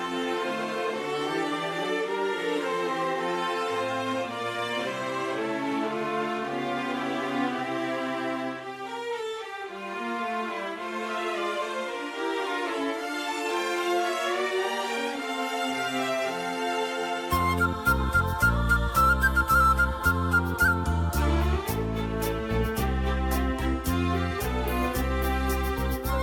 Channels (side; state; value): both; identical; correlation 1.00